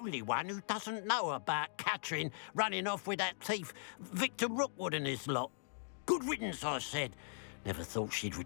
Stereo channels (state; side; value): silent; right; digital silence